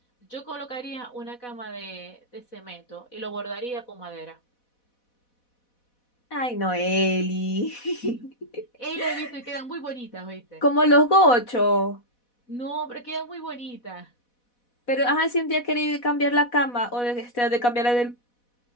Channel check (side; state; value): right; late; 4.1 ms